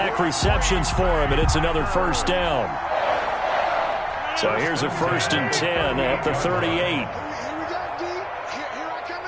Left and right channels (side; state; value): both; identical; correlation 1.00